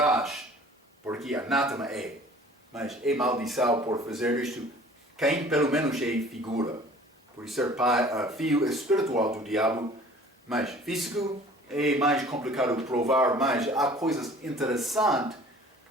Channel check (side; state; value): both; normal; correlation 0.48